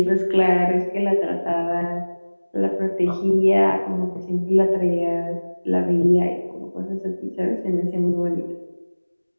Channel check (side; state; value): both; inverted; correlation -1.00